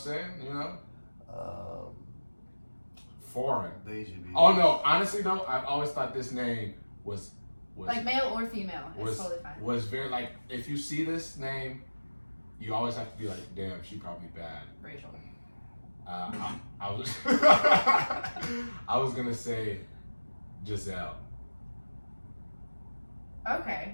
You know? Foreign. Deji B. Oh no, honestly though, I've always thought this name was Like male or female, it's was totally fine. was very like if you see this name, you always have to be like, damn, she probably bad. Rachel. I was I was gonna say Giselle.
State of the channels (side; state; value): both; inverted; correlation -1.00